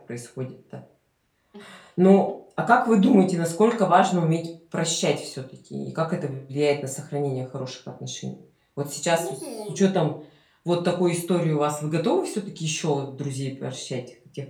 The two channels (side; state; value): both; identical; correlation 1.00